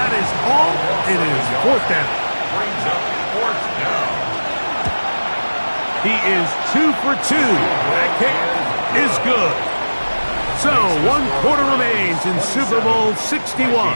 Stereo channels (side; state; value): both; inverted; correlation -1.00